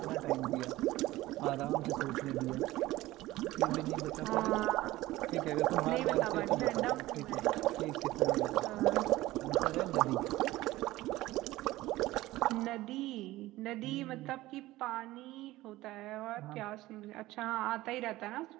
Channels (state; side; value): quieter; left; 17.4 dB